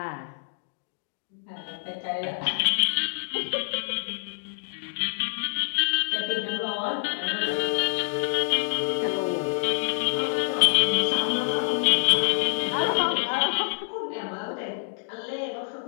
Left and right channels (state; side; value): silent; right; digital silence